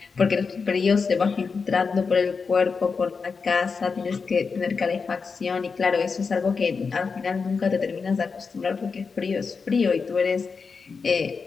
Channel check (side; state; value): right; quieter; 5.1 dB